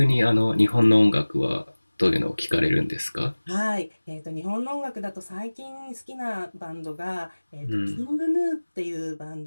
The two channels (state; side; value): inverted; both; correlation -1.00